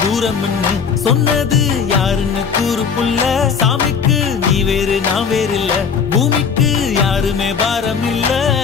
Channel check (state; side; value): quieter; right; 6.3 dB